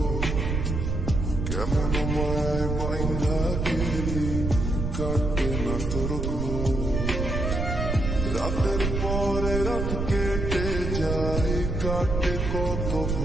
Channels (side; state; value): right; noise; rumble, 2 dB below the sound